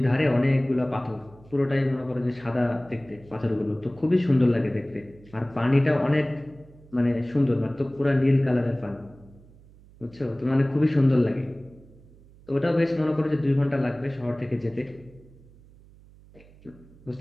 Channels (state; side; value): noise; right; hum, 24 dB below the sound